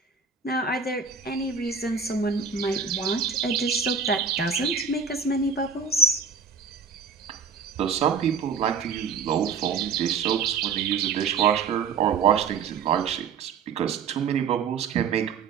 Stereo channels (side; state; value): left; quieter; 5.9 dB